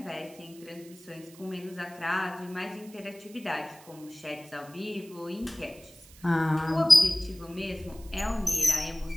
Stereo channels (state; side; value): noise; right; hiss, 22 dB below the sound